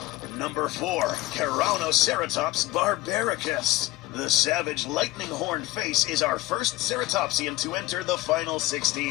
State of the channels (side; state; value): right; quieter; 17.9 dB